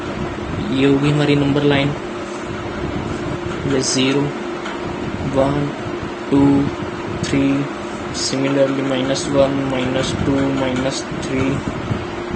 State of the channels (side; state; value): both; identical; correlation 1.00